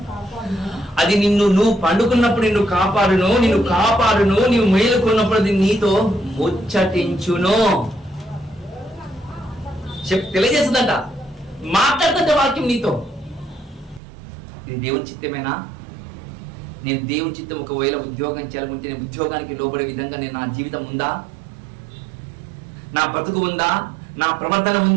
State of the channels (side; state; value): left; drops out; at 14.0 s